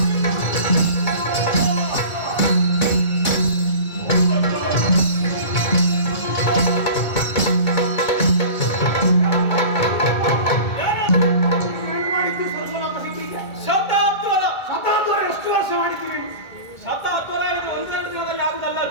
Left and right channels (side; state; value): right; late; 1.8 ms